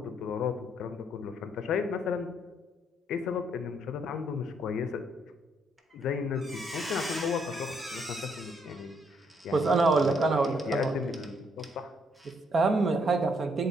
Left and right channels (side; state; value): both; normal; correlation 0.71